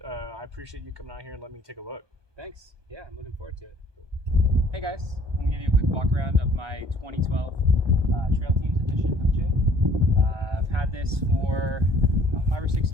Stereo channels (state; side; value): late; left; 1.2 ms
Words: I appreciate you coming out here and letting me take a look. Thanks. Yeah, I'm looking forward to it. Cool. Hey guys, I'm going to give you a quick walk around of my 2012 Trail Teams Edition FJ. I've had this for about 5 or 6